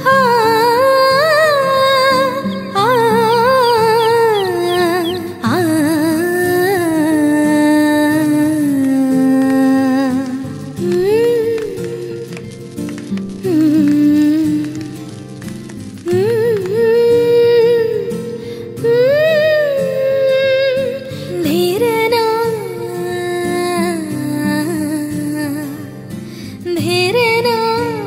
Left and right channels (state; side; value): identical; both; correlation 1.00